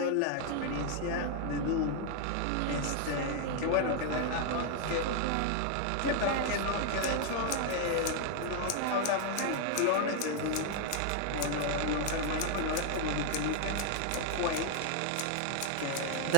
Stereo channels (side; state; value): both; different; correlation 0.00